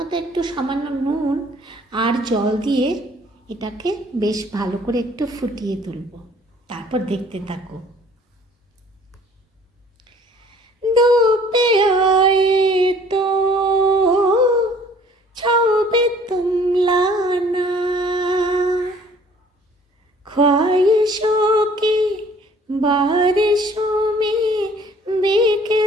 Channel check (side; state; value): both; normal; correlation 0.55